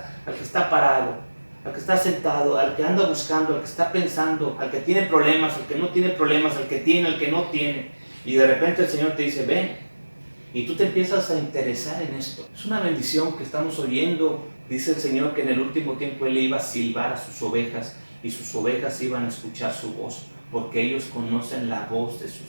al que está parado, al que está sentado, al que anda buscando, al que está pensando, al que tiene problemas, al que no tiene problemas, al que tiene, al que no tiene. Y de repente el Señor te dice, ven. Y tú te empiezas a interesar en esto. Es una bendición que estamos oyendo. Dice el Señor que en el último tiempo Él iba a silbar a sus ovejas y sus ovejas iban a escuchar su voz, porque ellos conocen la voz de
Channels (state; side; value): inverted; both; correlation -1.00